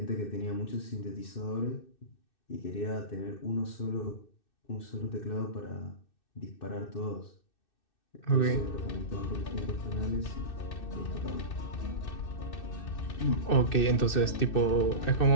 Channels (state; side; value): late; right; 2.6 ms